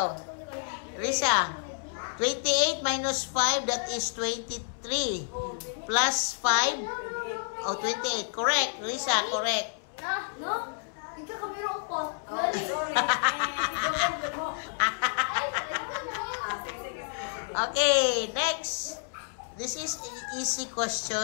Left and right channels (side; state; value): right; silent; 58 dB below the other